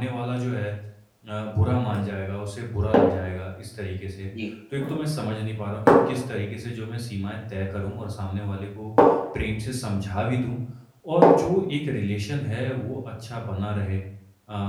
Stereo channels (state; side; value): identical; both; correlation 1.00